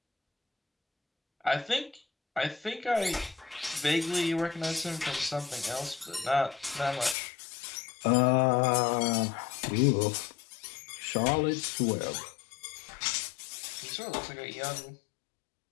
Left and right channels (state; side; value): drops out; right; at 7.2 s